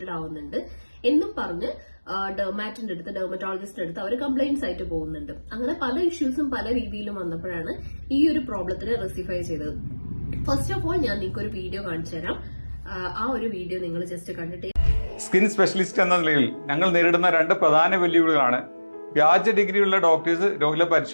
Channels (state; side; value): inverted; both; correlation -1.00